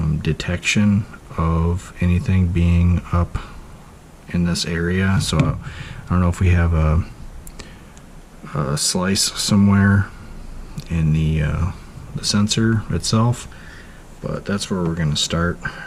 detection of anything being up in this area. So I don't know if we have a slice somewhere in the sensor itself, but that's where we're going to start.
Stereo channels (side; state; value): both; identical; correlation 1.00